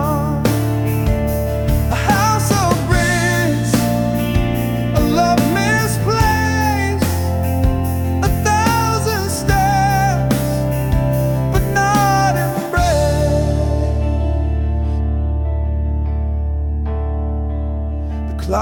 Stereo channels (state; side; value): identical; both; correlation 1.00